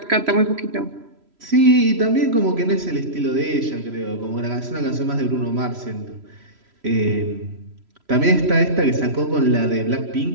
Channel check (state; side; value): late; left; 3.0 ms